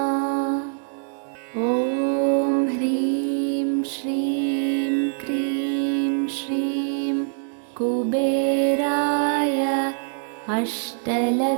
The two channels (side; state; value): left; silent; digital silence